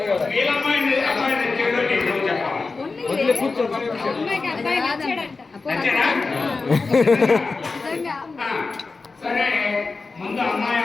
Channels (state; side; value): quieter; right; 4.0 dB